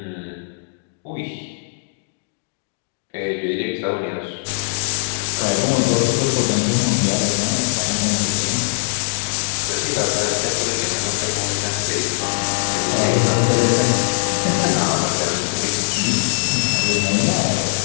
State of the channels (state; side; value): silent; right; digital silence